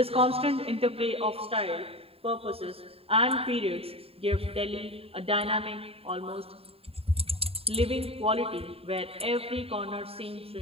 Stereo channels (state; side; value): late; left; 0.28 ms